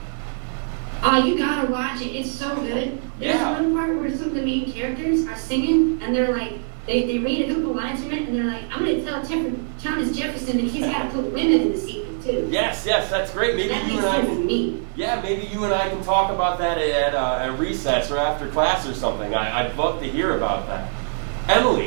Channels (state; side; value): silent; left; digital silence